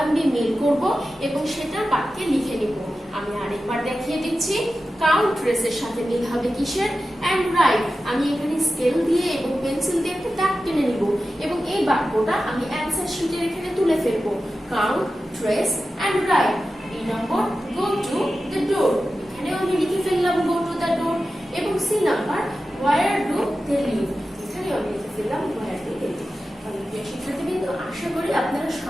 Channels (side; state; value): both; normal; correlation 0.93